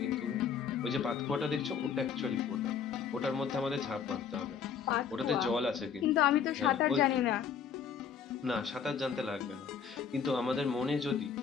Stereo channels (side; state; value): right; quieter; 6.9 dB